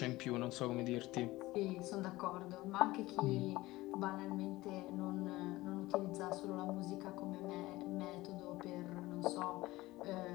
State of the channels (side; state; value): right; quieter; 18.8 dB